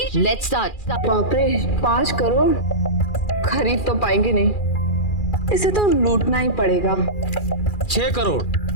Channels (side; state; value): right; late; 2.4 ms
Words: let's start. बाप रे, 5 करोड़ खरीद तो पाएंगे नहीं, इसे तो लूटना ही पड़ेगा। 6 करोड़।